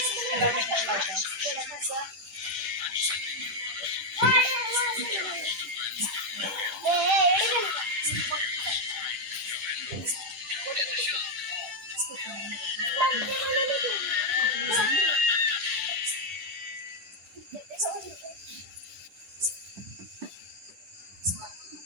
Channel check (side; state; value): left; late; 10 ms